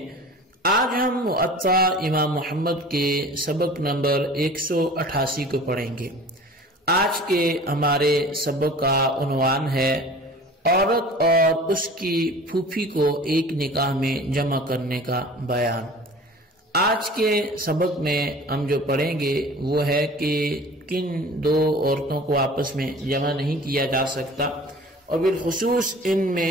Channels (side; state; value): both; normal; correlation 0.42